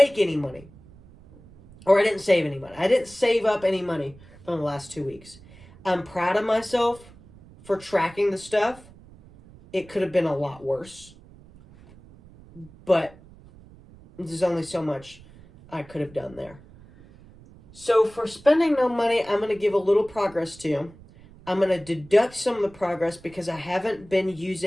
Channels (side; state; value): right; noise; rumble, 23 dB below the sound